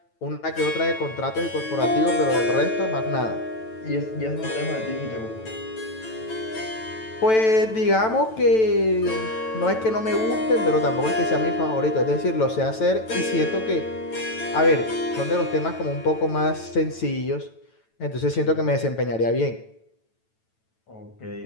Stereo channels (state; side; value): late; right; 9.1 ms